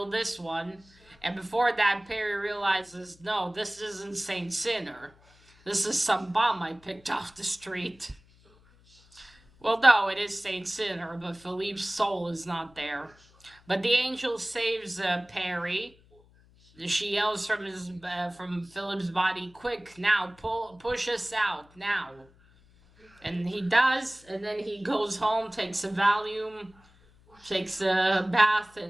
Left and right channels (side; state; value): left; noise; hum, 28 dB below the sound